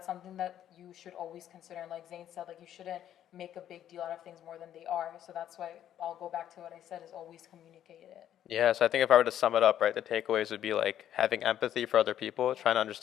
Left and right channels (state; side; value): quieter; right; 10.9 dB